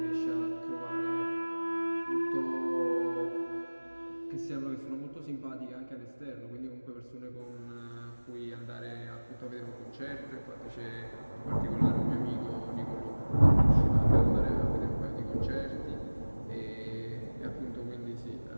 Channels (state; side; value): inverted; both; correlation -1.00